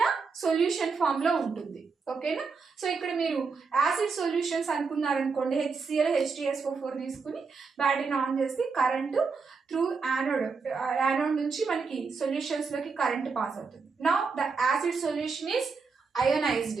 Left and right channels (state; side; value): quieter; left; 4.9 dB